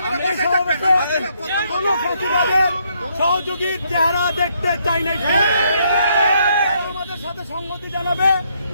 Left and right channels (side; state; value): both; inverted; correlation -0.73